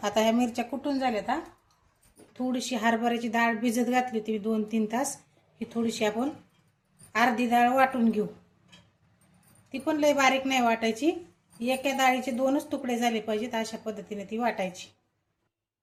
आता ह्या मिरच्या कुटून झाल्यात। थोडीशी हरभऱ्याची डाळ भिजत घातली होती 2-3 तास। ही थोडीशी आपण अर्धी डाळ वाटून घेऊ। ती पण लय बारीक नाही वाटायची, एका डाळीचे 2च तुकडे झाले पाहिजेत अशा पद्धतीने ती वाटायची।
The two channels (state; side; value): identical; both; correlation 1.00